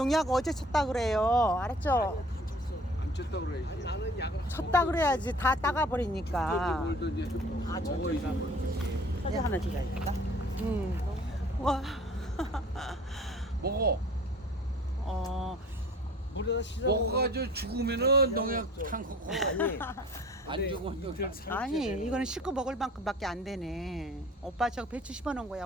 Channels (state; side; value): normal; both; correlation 0.48